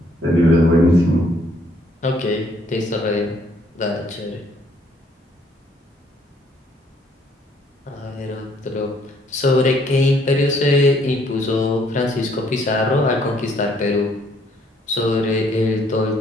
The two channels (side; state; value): both; normal; correlation 0.65